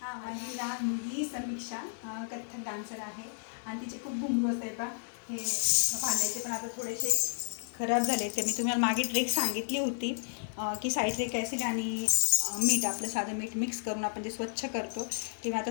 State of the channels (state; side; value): silent; right; digital silence